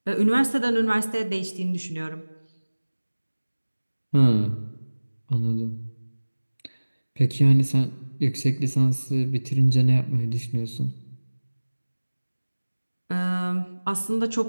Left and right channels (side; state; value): both; inverted; correlation -1.00